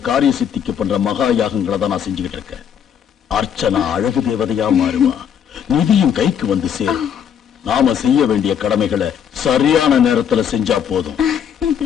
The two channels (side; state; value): right; quieter; 8.4 dB